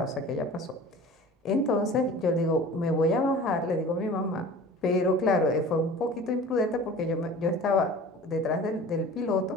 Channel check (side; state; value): both; normal; correlation 0.41